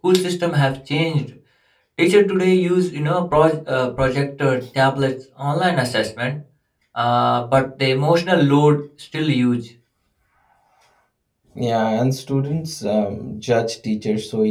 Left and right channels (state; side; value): identical; both; correlation 1.00